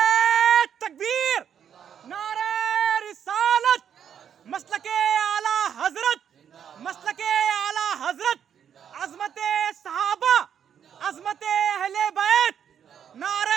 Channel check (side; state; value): left; quieter; 8.5 dB